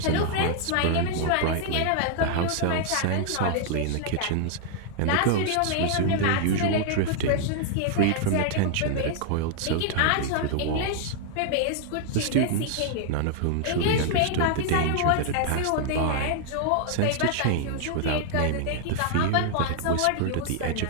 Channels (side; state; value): both; different; correlation 0.00